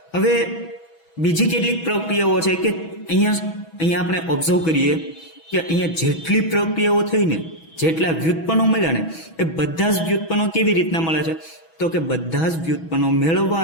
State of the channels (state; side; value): late; right; 6.1 ms